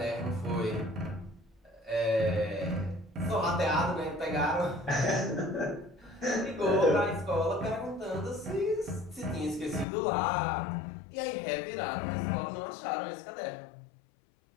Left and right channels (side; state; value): right; drops out; at 9.9 s